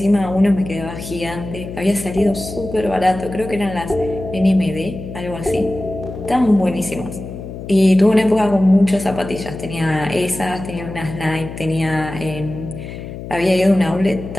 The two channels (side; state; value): left; noise; hum, 10 dB below the sound